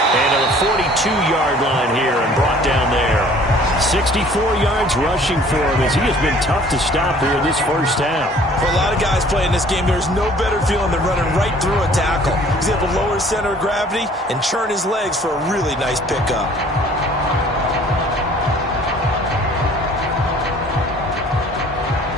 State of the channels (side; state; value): both; normal; correlation 0.53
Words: And to the 42-yard line here and brought down there. 64 yards rushing for him as he has been tough to stop here in this first half. For a lot of guys playing this game, there's no better feeling than running right through a tackle. He's able to lower his center of gravity and churn his legs for a really nice pickup.